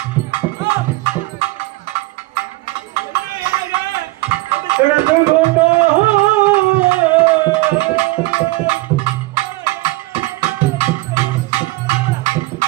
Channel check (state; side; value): quieter; left; 21.0 dB